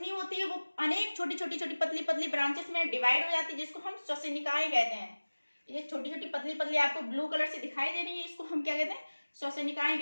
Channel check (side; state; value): both; inverted; correlation -1.00